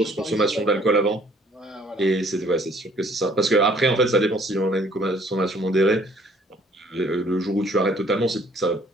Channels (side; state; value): both; normal; correlation 0.60